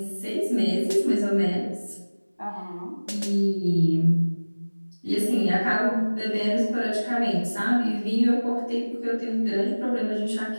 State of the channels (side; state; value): both; inverted; correlation -1.00